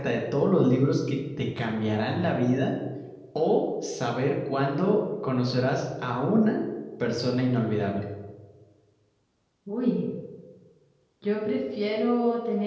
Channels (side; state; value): both; identical; correlation 1.00